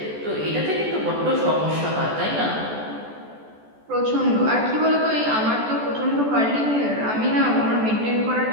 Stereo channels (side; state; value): left; late; 14 ms